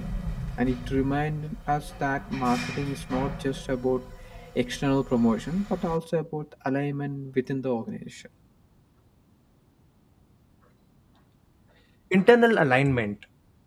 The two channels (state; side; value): identical; both; correlation 1.00